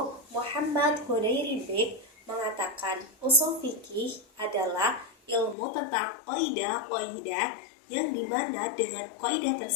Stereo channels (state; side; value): drops out; right; at 5.6 s